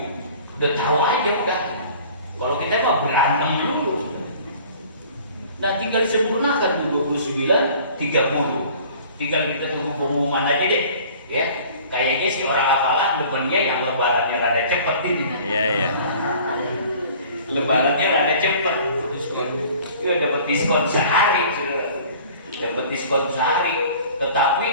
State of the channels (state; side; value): inverted; both; correlation -0.48